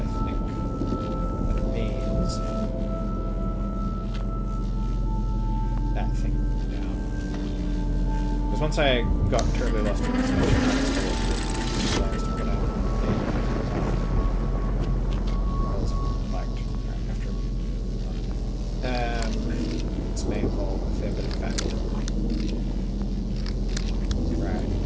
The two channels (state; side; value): identical; both; correlation 1.00